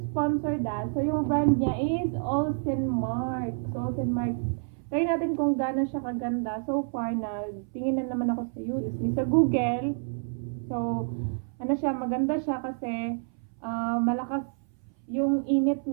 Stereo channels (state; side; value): silent; left; 59 dB below the other